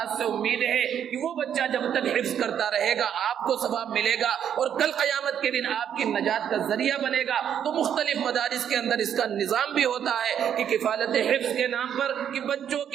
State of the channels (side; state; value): left; quieter; 9.0 dB